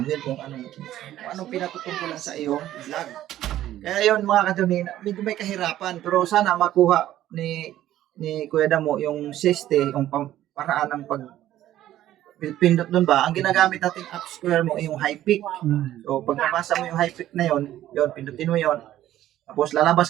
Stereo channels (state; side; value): quieter; left; 13.2 dB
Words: kung anong pinatutungkulan sa iyong vlog. Kaya yun mga kadunina, medyo may kahirapan pero sana makuha ni Kuya Damo yung siste, yung paraan ng pindot doon ba, ang ginagamit natin up square mo yung high pick. So pag nabasa mo yung high pick na yun, pindutin mo yun. Tapos